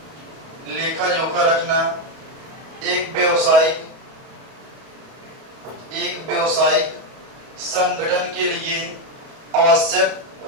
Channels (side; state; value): left; late; 31 ms